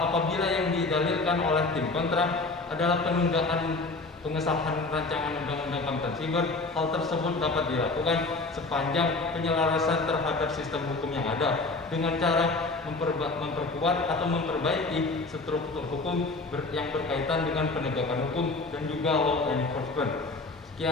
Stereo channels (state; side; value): quieter; right; 3.4 dB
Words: apabila yang didalilkan oleh tim kontra adalah penundaan pengesahan rancangan undang-undang keamanan siber, hal tersebut dapat dilakukan sepanjang penyelarasan terhadap sistem hukum yang ada dengan cara memperkuat atau memperbaiki struktur hukum yang berkaitan dengan penegakan hukum dan juga law enforcement.